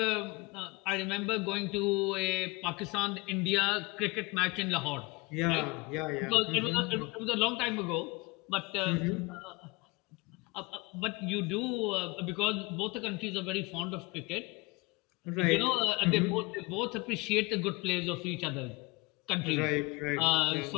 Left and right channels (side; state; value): right; quieter; 24.6 dB